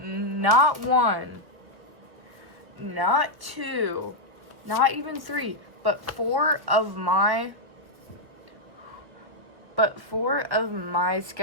one, not two, not even three, but four of my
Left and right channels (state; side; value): late; left; 1.0 ms